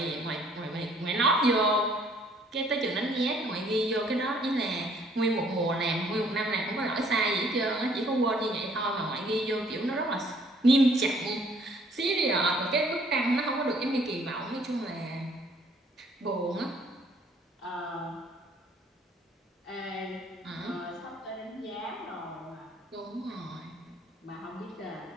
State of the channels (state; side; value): normal; both; correlation 0.61